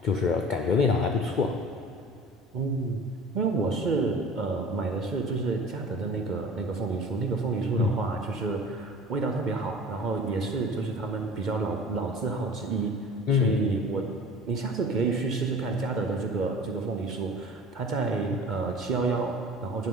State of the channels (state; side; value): normal; both; correlation 0.42